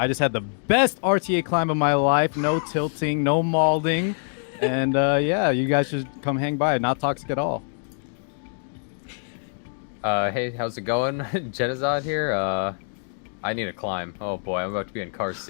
just had the best RTA climb of my life. No tilting, no mauling. And yeah, you guys should come hang by. Not toxic at all. Hey, how's it going? Jenazad here. I need to climb. Oh boy, I'm about to be in car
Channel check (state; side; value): silent; right; digital silence